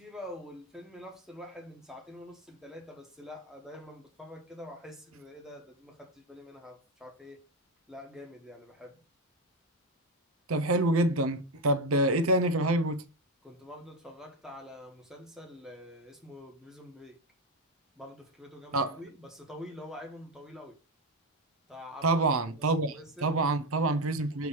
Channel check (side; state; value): both; normal; correlation 0.12